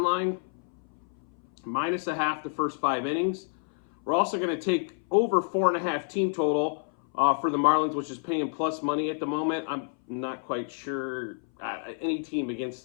line. Minus a half the first 5 innings. We're also going to take over 4.5 team total for the Marlins, which is paying plus money at the moment. I'm not quite sure. Any team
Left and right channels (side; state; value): right; silent; 58 dB below the other